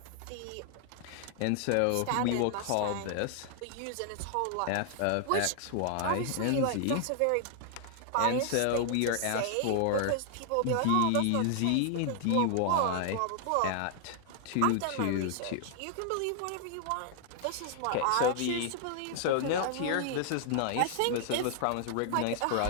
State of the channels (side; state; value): both; different; correlation 0.00